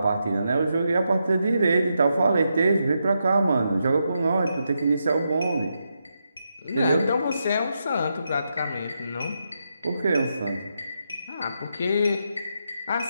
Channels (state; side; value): inverted; both; correlation -0.84